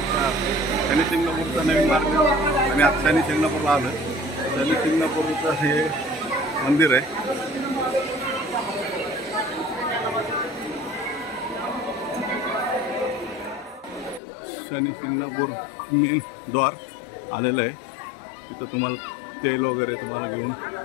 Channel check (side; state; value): right; drops out; at 14.2 s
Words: शनी शिंगणापूरचा नवीन मार्ग आणि आता शनी शिंगणापूरला आलं. शनी शिंगणापूरचं हे मंदिर आहे. शनी शिंगणापूर मेन द्वार आलेलं आहे. तिथं तुम्हाला तेल वगैरे तुम्हाला घेऊन